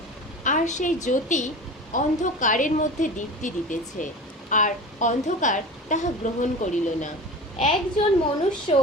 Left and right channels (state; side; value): normal; both; correlation 0.33